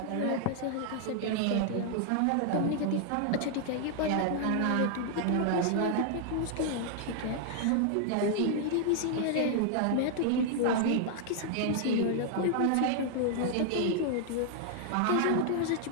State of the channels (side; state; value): both; different; correlation 0.00